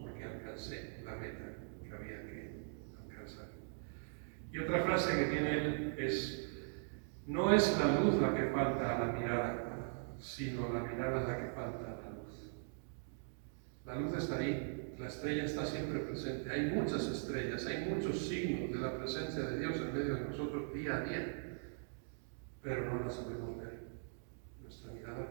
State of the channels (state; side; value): silent; left; digital silence